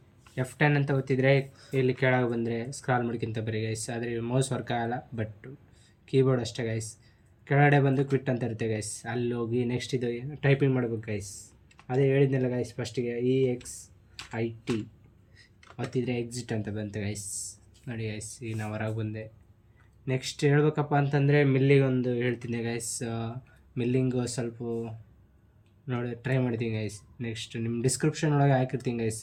F10 ಅಂತ ಒತ್ತಿದ್ರೆ ಇಲ್ಲಿ ಕೆಳಗೆ ಬಂದರೆ ಸ್ಕ್ರಾಲ್ ಮಾಡ್ಕೊಂತ ಬರೀ ಗೈಸ್. ಆದರೆ ಮೌಸ್ ವರ್ಕ್ ಆಗಲ್ಲ, ಬಟ್ ಕೀಬೋರ್ಡ್ ಅಷ್ಟೇ ಗೈಸ್. ಕೆಳಗಡೆ ಬಂದು ಕ್ವಿಟ್ ಅಂತ ಇರುತ್ತೆ ಗೈಸ್, ಅಲ್ಲಿ ಹೋಗಿ ನೆಕ್ಸ್ಟ್ ಇದು ಟೈಪಿಂಗ್ ಮಾಡ್ಬೇಕು ಗೈಸ್. ಅದೇ ಹೇಳಿದ್ನಲ್ಲ ಗೈಸ್ ಫಸ್ಟಿಗೆ EXIT ಒತ್ತಿದ್ರೆ ಎಕ್ಸಿಟ್ ಅಂತ ಬಂತು ಗೈಸ್. ನೋಡಿ ಗೈಸ್ ಈಗ ನಾವು ಹೊರಗೆ ಬಂದೆ. ನೆಕ್ಸ್ಟ್ ಹೇಳ್ಬೇಕಪ್ಪ ಅಂತಂದರೆ ಮಿಲ್ಲಿಗೆ ಒಂದು ಹೇಳ್ತೀನಿ ಗೈಸ್. ಮಿಲ್ಲಿಂಗು ಸ್ವಲ್ಪ ನೋಡಿ ಟ್ರೈ ಮಾಡ್ತೀನಿ ಗೈಸ್. ನೆಕ್ಸ್ಟ್ ನಿಮ್ಮ ಡಿಸ್ಕ್ರಿಪ್ಷನ್ ಒಳಗೆ ಹಾಕಿರ್ತೀನಿ ಗೈಸ್.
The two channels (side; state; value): both; identical; correlation 1.00